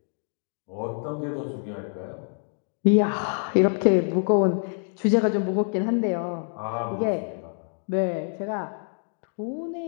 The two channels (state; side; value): silent; right; 61 dB below the other